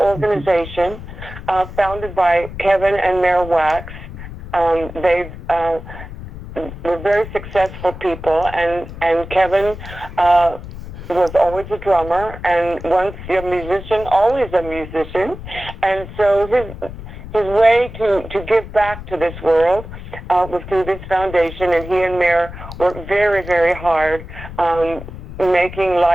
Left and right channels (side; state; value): left; noise; rumble, 12 dB below the sound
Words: founded by Kevin and Mayor Wax. They've were very successful people, and Kevin was always a drummer, and once a musician, always a musician, and so his way to give back to this world was through this foundation, and he and Mayor worked very, very hard making